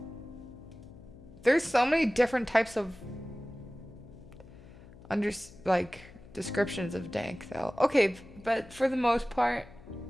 There's so many different types of descriptions of dank though. Okay, but for the most part,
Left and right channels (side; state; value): left; noise; hum, 20 dB below the sound